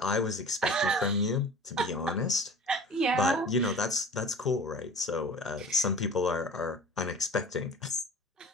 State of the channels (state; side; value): normal; both; correlation 0.41